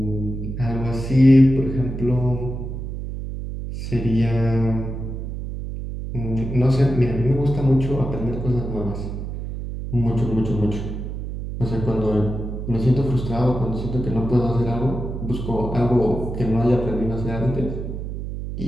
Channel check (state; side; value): noise; right; hum, 6 dB below the sound